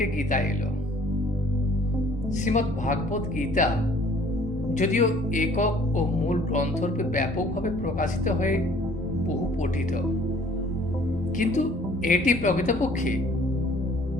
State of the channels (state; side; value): normal; both; correlation 0.55